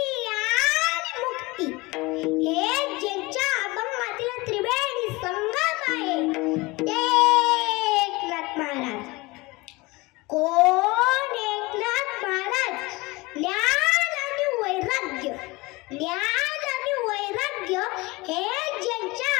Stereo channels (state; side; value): quieter; right; 23.1 dB